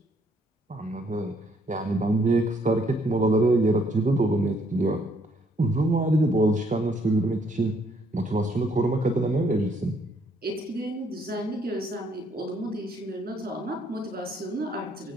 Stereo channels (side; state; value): both; normal; correlation 0.68